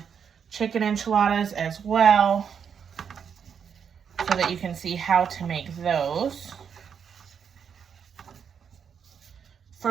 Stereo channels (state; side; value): quieter; left; 7.2 dB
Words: chicken enchiladas as well, so that you can see how to make those.